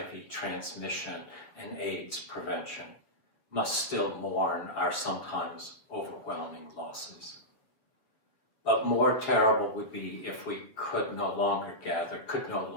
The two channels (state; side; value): late; right; 7.0 ms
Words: transmission and AIDS prevention, must still mourn our sometimes overwhelming losses. But more terrible would be if we could no longer gather, could no